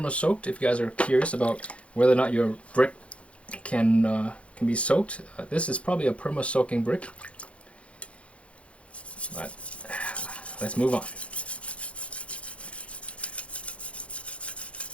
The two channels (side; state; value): right; late; 0.062 ms